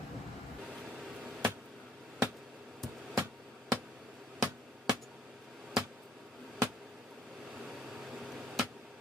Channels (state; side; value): normal; both; correlation 0.62